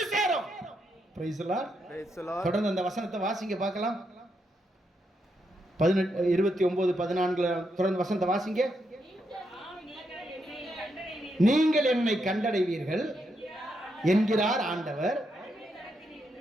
சேரும். Price the Lord. தொடர்ந்து அந்த வசனத்தை வாசிங்க பார்க்கலாம். 29 14 தொடர்ந்து வசனத்தை வாசிங்க. நீங்கள் என்னை கண்டடைவீர்கள் என்கிறார் ஆண்டவர்,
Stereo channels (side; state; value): both; normal; correlation 0.81